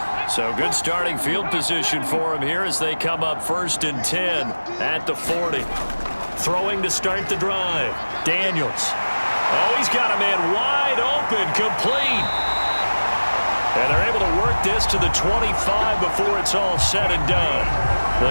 So good starting field position for him here as they come up 1st and 10 at the 40. Throwing to start the drive. Daniels. Oh, he's got a man wide open, complete. And they're able to work this to the 25 before it's all said and done.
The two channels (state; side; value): inverted; both; correlation -1.00